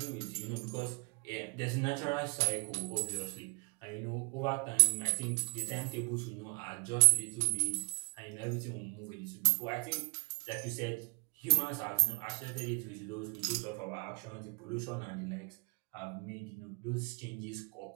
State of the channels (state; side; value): quieter; left; 33.4 dB